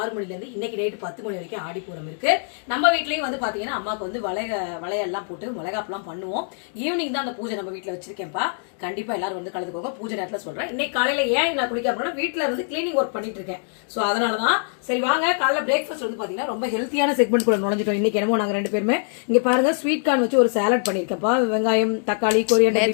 6 மணில இருந்து இன்னைக்கு நைட்டு 10 மணி வரைக்கும் ஆடிப்பூரம் இருக்கு. நம்ம வீட்லயும் வந்து பாத்தீங்கன்னா அம்மாக்கு வந்து வளையெல்லாம் போட்டு மிளகாப்பெல்லாம் பண்ணுவோம். ஈவினிங் தான் அந்த பூஜை நம்ம வீட்டுல வச்சிருக்கேன்ப்பா. கண்டிப்பா எல்லாரும் வந்து கலந்துக்கோங்க. பூஜை நேரத்துல சொல்றேன். இன்னைக்கு காலையில ஏன் நான் குளிக்க அப்படின்னா வீட்டுல வந்து கிளீனிங் ஒர்க் பண்ணிட்டு இருக்கேன். சோ அதனாலதான் சரி வாங்க காலைல பிரேக்ஃபாஸ்ட் வந்து பாத்தீங்கன்னா ரொம்ப ஹெல்த்தியான செக்மெண்ட் கூட நுழைஞ்சிட்டோம். இன்னைக்கு என்னமோ நாங்க 2 பேருமே இங்க பாருங்க ஸ்வீட் கார்ன் வச்சு ஒரு சாலட் பண்ணிருக்கேன்ப்பா. வெங்காயம், தக்காளி,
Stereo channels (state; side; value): silent; right; digital silence